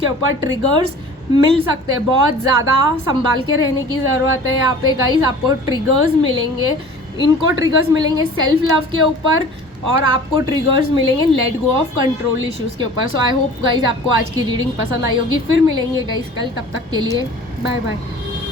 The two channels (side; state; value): both; normal; correlation 0.44